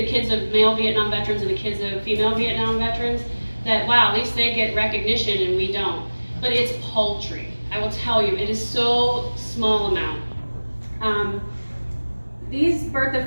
kids of male Vietnam veterans and the kids of female Vietnam veterans, that wow, at least they get recognition and we don't. But it's paltry. I will tell you, it is so small amount. These birth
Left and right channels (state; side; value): inverted; both; correlation -1.00